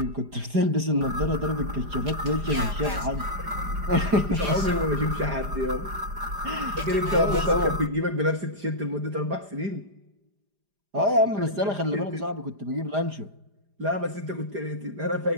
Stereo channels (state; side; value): late; left; 4.9 ms